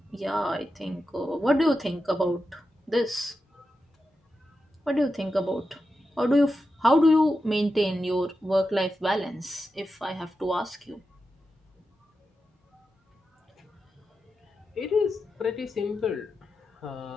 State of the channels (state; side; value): normal; both; correlation 0.90